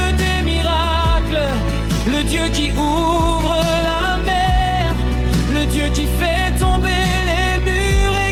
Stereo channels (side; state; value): both; identical; correlation 1.00